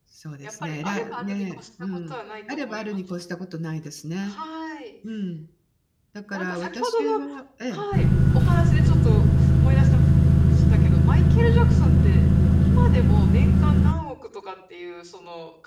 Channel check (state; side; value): identical; both; correlation 1.00